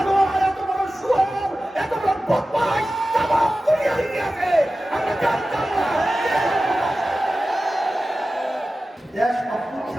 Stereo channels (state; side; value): normal; both; correlation 0.95